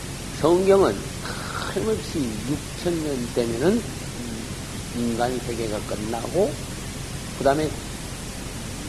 성경은 틀림없이 6000년 되면은 인간 세계가 끝나고, 그 다음에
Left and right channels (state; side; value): identical; both; correlation 1.00